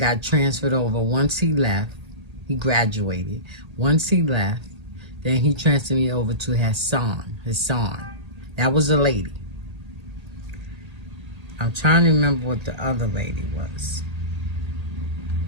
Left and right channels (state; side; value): late; left; 1.8 ms